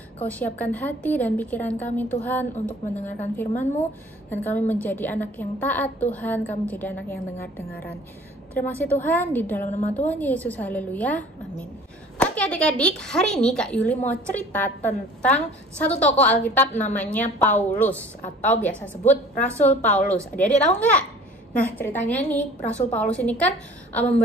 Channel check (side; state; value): both; normal; correlation 0.48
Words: Kau siapkan hati dan pikiran kami Tuhan untuk mendengarkan firman-Mu, dan kami menjadi anak yang taat Tuhan, kami menjadi anak yang dengar-dengaran. Terima kasih Tuhan, di dalam nama Tuhan Yesus, haleluya, amin. Oke adik-adik, hari ini Kak Yuli mau cerita tentang satu tokoh Alkitab namanya Paulus, atau biasa sebut Rasul Paulus. Adik-adik tahu nggak? Nah, ceritanya nih, Rasul Paulus ini kan